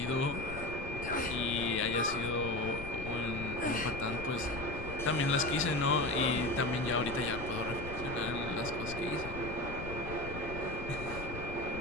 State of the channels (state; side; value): noise; left; rumble, 9 dB below the sound